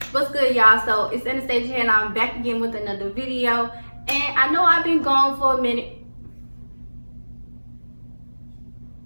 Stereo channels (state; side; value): inverted; both; correlation -1.00